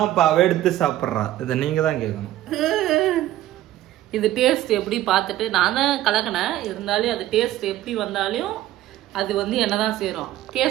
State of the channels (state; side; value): quieter; left; 14.2 dB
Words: அப்ப அவ எடுத்து சாப்பிட்றா. இதை நீங்க தான் கேட்கணும். இது டேஸ்ட் எப்படி பார்த்துட்டு நான் தான் கலக்கினேன். இருந்தாலும் அது டேஸ்ட் எப்படி வந்தாலும் அது வந்து என்னதான் சேரும்.